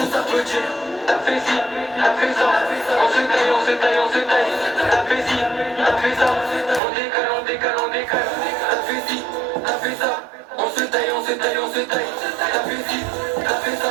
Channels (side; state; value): left; drops out; at 6.8 s